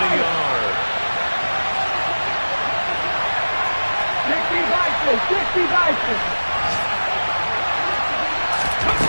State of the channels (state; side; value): inverted; both; correlation -1.00